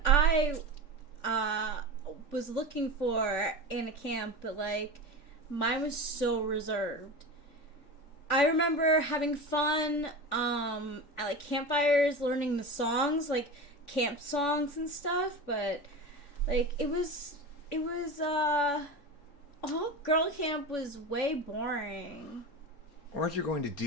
I was looking for in a camp, but like mine was so reserved. I remember having fun at like campfires, learning the songs, like camp songs and stuff, but like it was all girl camp was way boring. Weren't you going to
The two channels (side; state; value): right; late; 3.5 ms